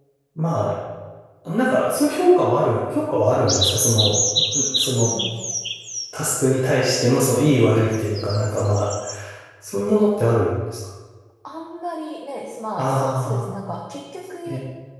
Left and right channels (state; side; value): identical; both; correlation 1.00